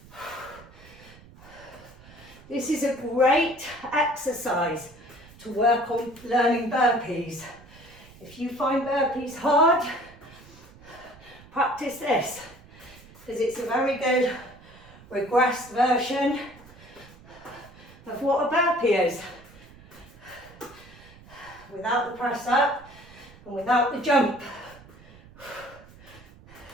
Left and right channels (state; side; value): noise; right; rumble, 22 dB below the sound